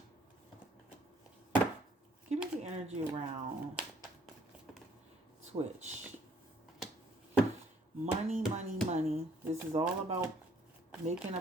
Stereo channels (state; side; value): normal; both; correlation 0.63